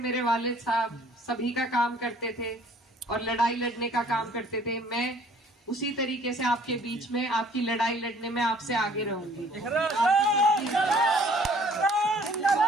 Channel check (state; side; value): normal; both; correlation 0.56